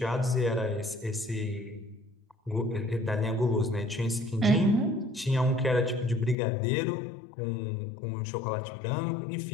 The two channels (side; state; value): right; drops out; at 6.4 s